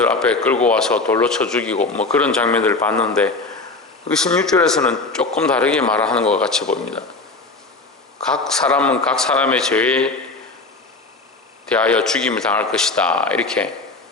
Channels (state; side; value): quieter; right; 3.5 dB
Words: 앞에 끌고 와서 돌로 쳐 죽이고 뭐 그런 장면들을 봤는데, 16절에서는 조금 다르게 말하는 것 같이 보입니다. 각 사람은 각 사람의 죄에 대하여 죽임을 당할 것이다 이렇게